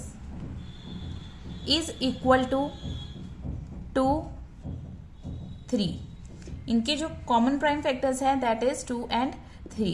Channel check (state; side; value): identical; both; correlation 1.00